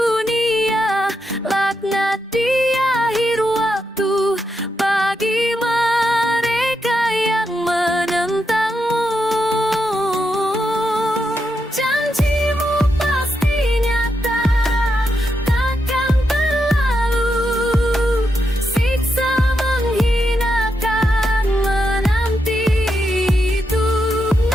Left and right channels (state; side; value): normal; both; correlation 0.84